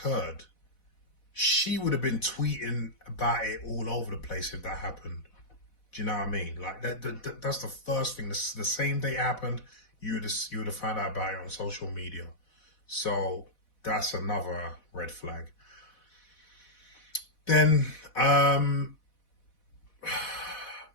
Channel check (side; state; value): right; late; 4.1 ms